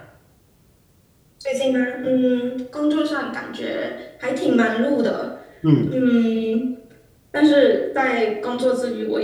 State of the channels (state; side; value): identical; both; correlation 1.00